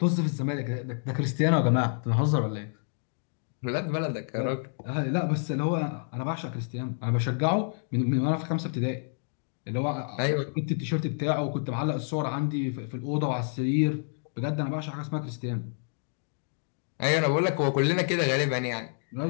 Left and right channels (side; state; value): right; silent; digital silence